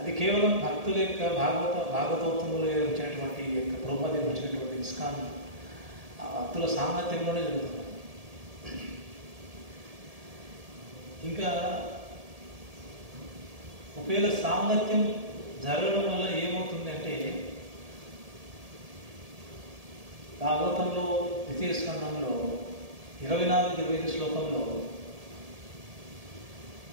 కేవలం భక్తుల యొక్క భాగవతోత్తములు వచ్చినటువంటి యొక్క ప్రభుత్వం వచ్చినటువంటి ఇస్కాన్ భక్తుల సాంగత్యంలోనే జరుగుతుంది. ఇంకా ఒకవేళ సాంగత్యం జరగడం వల్ల ఏమవుతుంది అంటే, భాగవతంలో ద్వితీయ స్కంధంలో 24-25 శ్లోకంలో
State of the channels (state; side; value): late; left; 1.7 ms